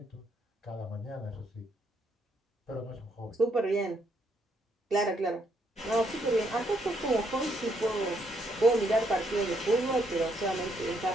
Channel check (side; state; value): both; normal; correlation 0.73